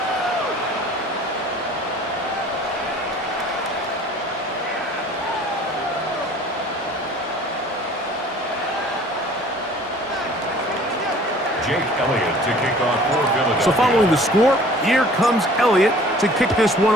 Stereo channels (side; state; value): both; normal; correlation 0.50